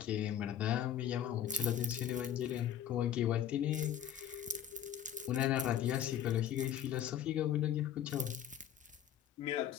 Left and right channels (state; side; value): quieter; right; 9.9 dB